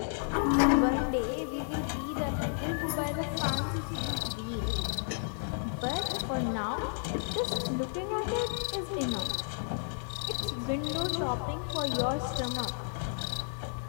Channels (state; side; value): silent; right; 56 dB below the other